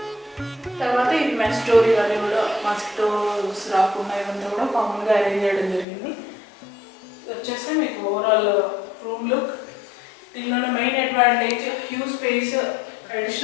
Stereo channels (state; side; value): drops out; right; at 5.9 s